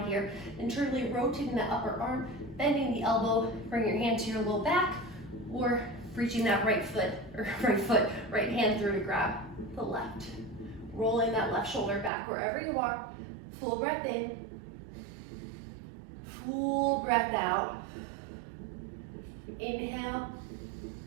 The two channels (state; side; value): drops out; left; at 12.1 s